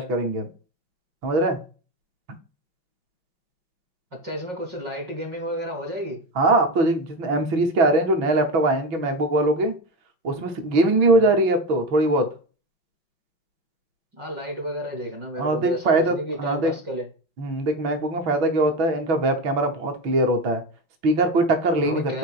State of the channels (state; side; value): late; left; 6.1 ms